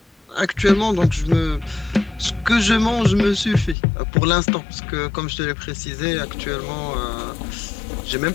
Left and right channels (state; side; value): drops out; right; at 3.8 s